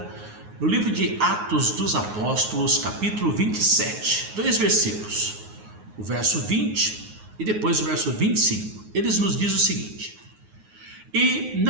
no livro de Atos dos Apóstolos, capítulo 27, dois versículos, o verso 20 e depois o verso 25. Eles nos diz o seguinte: E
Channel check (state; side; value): late; left; 9.5 ms